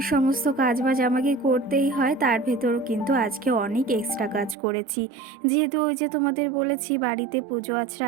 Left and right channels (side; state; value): left; drops out; at 4.5 s